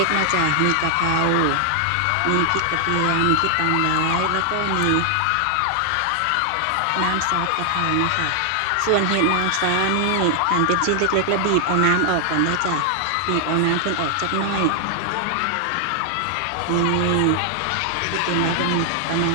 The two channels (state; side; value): different; both; correlation 0.00